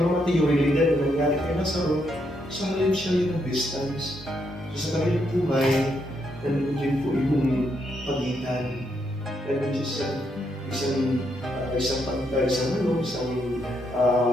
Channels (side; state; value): both; normal; correlation 0.77